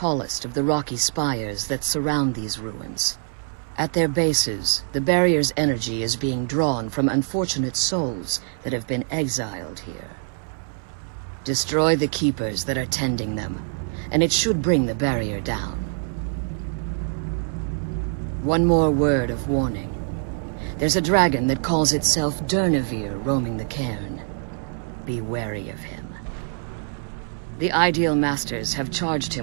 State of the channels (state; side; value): silent; left; 62 dB below the other